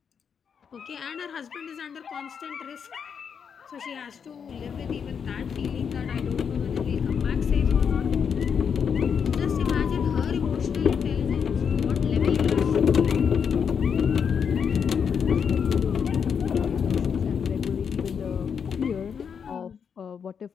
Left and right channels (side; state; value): right; quieter; 6.9 dB